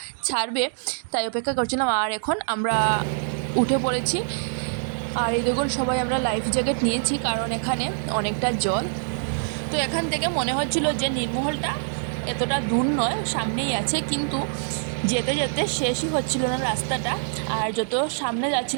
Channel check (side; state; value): left; silent; digital silence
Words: ছাড়বে, তাই অপেক্ষা করছিলাম। আর এখন আমরা উঠে পড়েছি, আর এই দেখুন সবাই আমরা লাইফ জ্যাকেট নিয়েছি, কারণ এখানে অনেকটা জল। তো এখান থেকে মনে হচ্ছিল যে নীরমহলটা এতটা দূর নয়, সামনেই আছে, কিন্তু যেতে যেতে শেষই হচ্ছিল না রাস্তাটা। আর যত সামনে